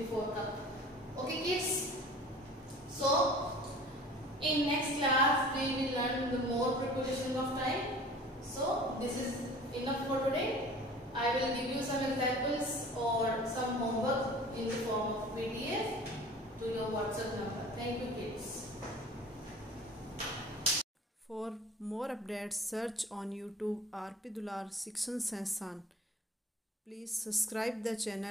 cup. Okay kids, so in next class we will learn the more prepositions of time. So this is enough for today. I will give you some examples or some homework in the form of PDF to your WhatsApp number. Thank you kids. For more updates, search on YouTube RP Dular Section Sansan. Please subscribe the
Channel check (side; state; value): both; normal; correlation 0.45